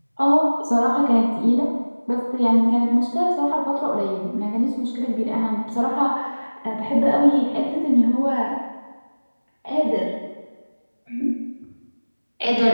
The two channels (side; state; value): both; inverted; correlation -1.00